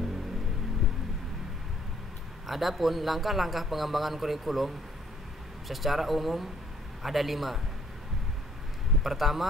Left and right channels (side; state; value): both; normal; correlation 0.64